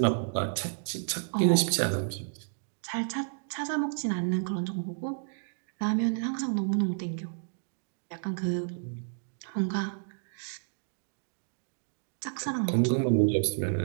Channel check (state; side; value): silent; left; digital silence